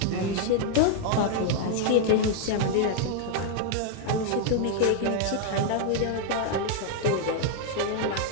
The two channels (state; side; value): different; both; correlation 0.00